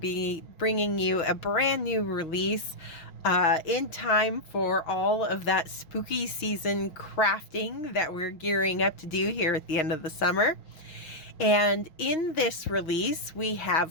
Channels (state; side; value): late; right; 5.9 ms